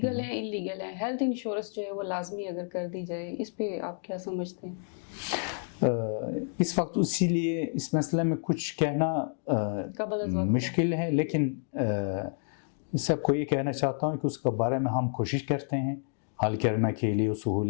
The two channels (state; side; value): silent; right; 58 dB below the other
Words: ہیں ان لیگل ہیں, ہیلتھ انشورنس جو ہے وہ لازمی اگر کر دی جائے, اس پہ آپ کیا سمجھتے ہیں؟ اس وقت اسی لیے اس مسئلے میں کچھ کہنا مشکل ہے, لیکن سب کو یہ کہنا چاہتا ہوں کہ اس کے بارے میں ہم کوشش کرتے ہیں حل کرنے کے لیے,